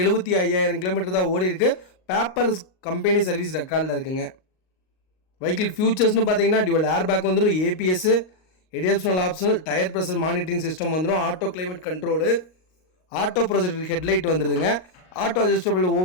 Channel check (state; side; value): late; right; 38 ms